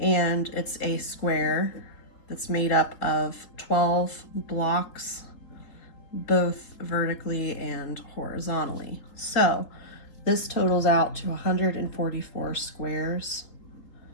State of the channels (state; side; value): late; right; 3.9 ms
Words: it's a square that's made up of 12 blocks, both vertically and horizontally. So this totals out to 144 squares